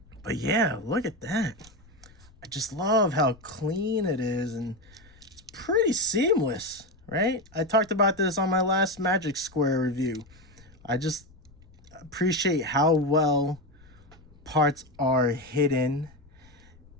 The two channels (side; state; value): left; noise; rumble, 26 dB below the sound